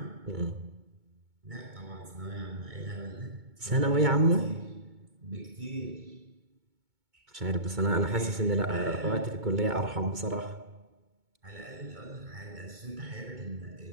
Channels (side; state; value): left; late; 2.2 ms